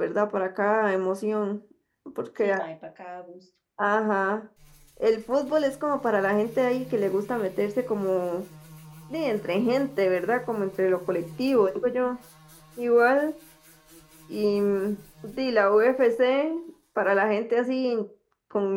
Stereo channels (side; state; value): both; identical; correlation 1.00